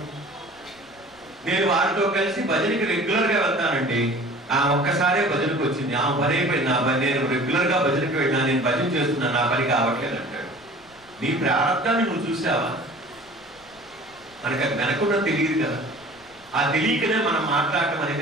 నేను వారితో కలిసి భజనకి రెగ్యులర్ గా వెళ్తానండి, ఆ ఒక్కసారే భజనకు వచ్చింది, ఆ పని అయిపోయింది, నా పని, నేను రెగ్యులర్ గా భజనకి వెళ్ళినా, నేను భజన చేస్తున్నాను, నా పని కావట్లేదు అంటాడు. నీ ప్రారంభాన్ని నువ్వు చూసావా? మనకు అది వెనకుండా తెలియదు కదా. ఆ తెలియకనే మనం మాట్లాడటం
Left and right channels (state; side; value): noise; left; rumble, 29 dB below the sound